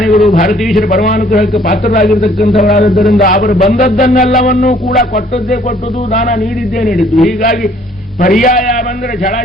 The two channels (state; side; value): normal; both; correlation 0.60